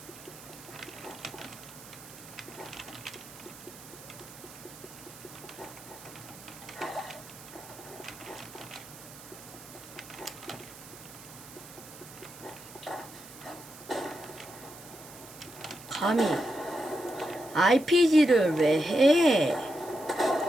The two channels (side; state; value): right; noise; hiss, 17 dB below the sound